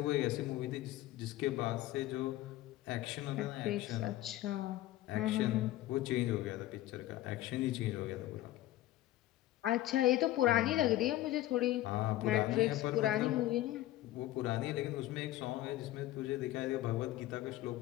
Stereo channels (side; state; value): right; quieter; 15.3 dB